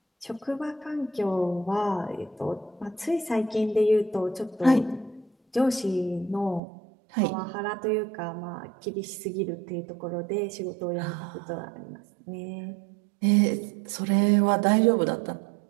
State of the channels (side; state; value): left; drops out; at 6.6 s